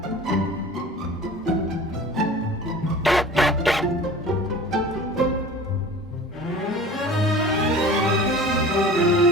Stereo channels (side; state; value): both; normal; correlation 0.41